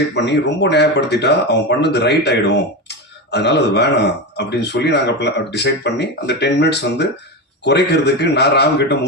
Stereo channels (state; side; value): normal; both; correlation 0.18